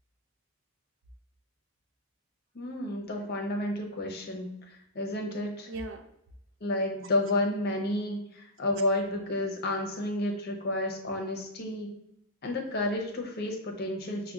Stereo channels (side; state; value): both; normal; correlation -0.08